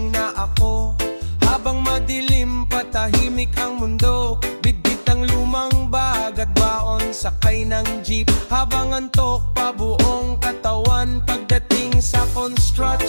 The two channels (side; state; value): both; inverted; correlation -1.00